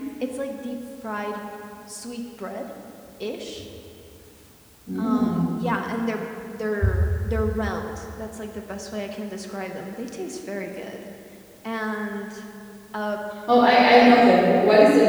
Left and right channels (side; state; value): both; identical; correlation 1.00